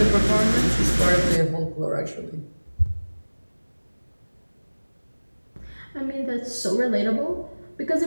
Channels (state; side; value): inverted; both; correlation -1.00